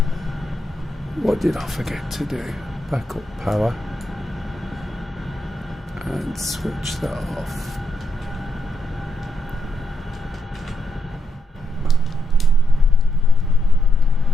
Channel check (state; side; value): normal; both; correlation 0.80